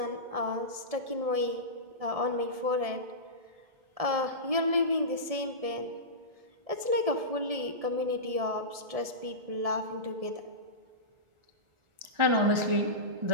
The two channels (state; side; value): late; left; 1.7 ms